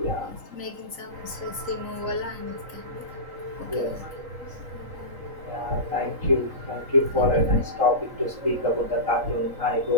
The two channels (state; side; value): late; left; 3.9 ms